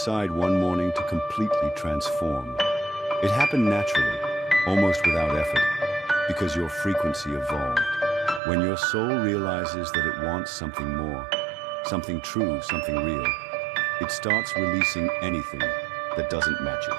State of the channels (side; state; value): left; drops out; at 8.4 s